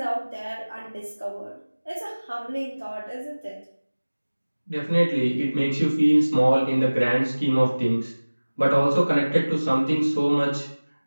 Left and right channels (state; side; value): inverted; both; correlation -1.00